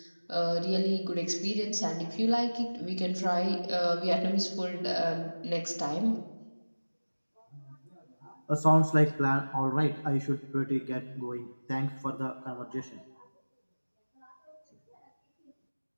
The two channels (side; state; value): both; inverted; correlation -1.00